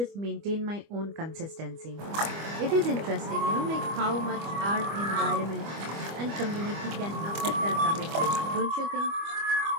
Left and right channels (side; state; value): left; late; 25 ms